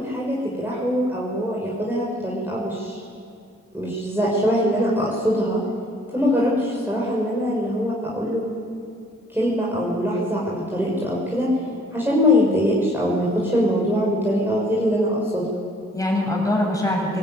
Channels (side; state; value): both; normal; correlation 0.59